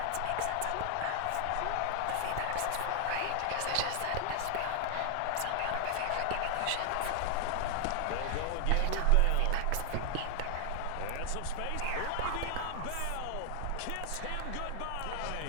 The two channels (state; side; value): different; both; correlation 0.00